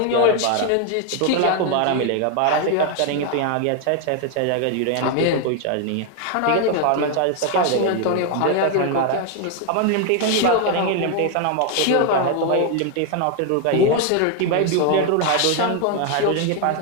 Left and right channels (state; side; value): different; both; correlation 0.01